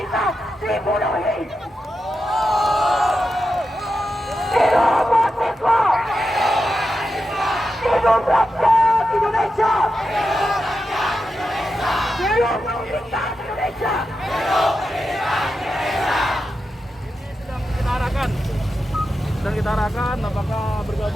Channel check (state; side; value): normal; both; correlation 0.89